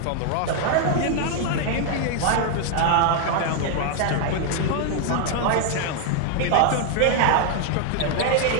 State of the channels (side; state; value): both; different; correlation 0.00